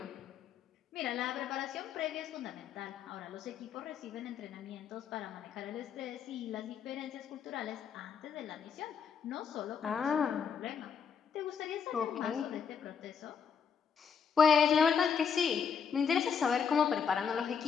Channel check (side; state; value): right; quieter; 6.9 dB